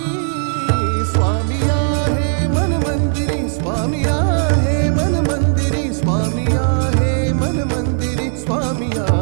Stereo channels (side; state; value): left; silent; 58 dB below the other